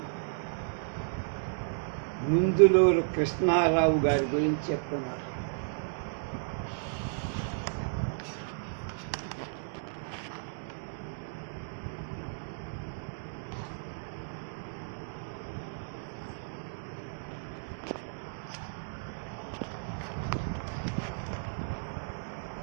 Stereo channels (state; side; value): silent; left; digital silence